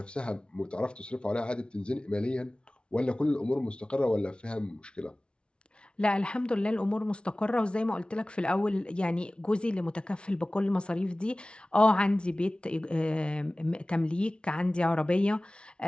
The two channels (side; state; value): right; late; 0.057 ms